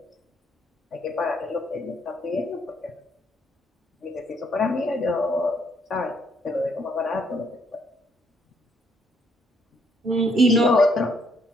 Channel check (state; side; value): normal; both; correlation 0.69